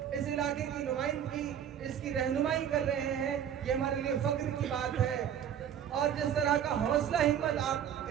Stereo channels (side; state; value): left; quieter; 9.2 dB